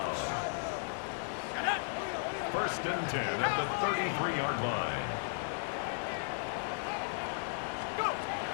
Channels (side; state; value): right; silent; digital silence